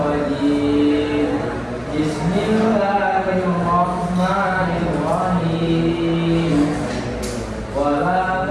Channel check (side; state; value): both; identical; correlation 1.00